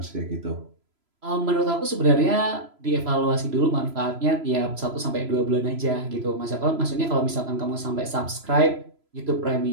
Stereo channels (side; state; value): left; late; 3.0 ms